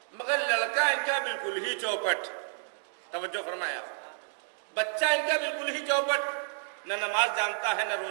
مگر لڑکا ان کا بالکل ہی چوپٹ، توجہ فرمایا، بچہ ان کا بالکل ہی چوپٹ، نہ نماز جانتا ہے، نہ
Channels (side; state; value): left; silent; digital silence